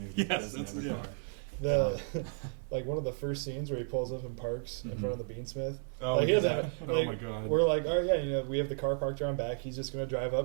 doesn't have a car. Like one of the first scenes where he pulls up and parks in front of the Beansmith. Oh, like, oh my God. We're like, all right, we have the car parked around back. He's just going to drive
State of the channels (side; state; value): left; silent; digital silence